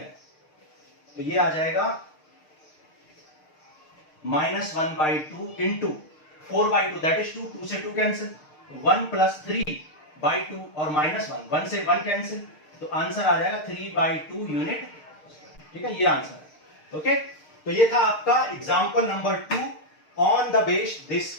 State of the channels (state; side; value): late; right; 6.6 ms